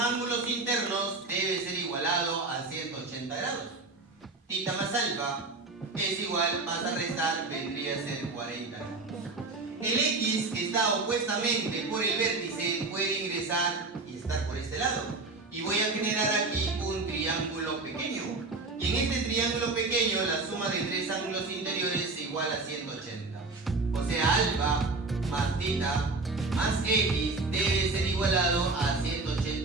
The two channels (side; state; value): left; quieter; 3.5 dB